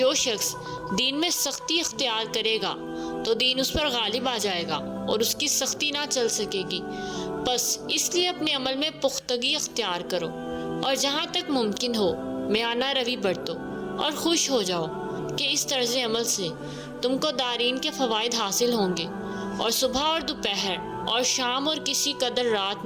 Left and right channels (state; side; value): identical; both; correlation 1.00